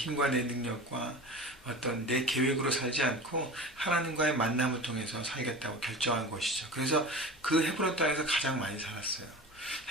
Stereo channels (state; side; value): normal; both; correlation 0.34